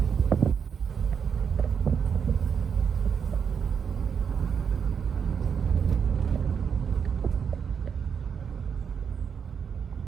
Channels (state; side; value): quieter; left; 6.9 dB